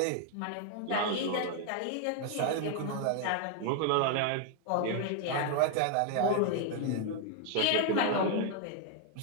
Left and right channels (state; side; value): different; both; correlation 0.00